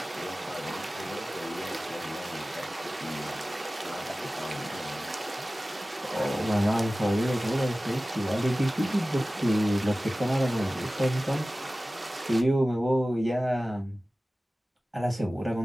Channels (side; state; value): both; normal; correlation 0.97